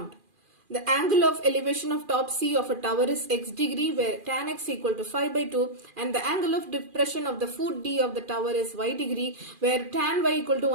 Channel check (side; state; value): left; late; 2.4 ms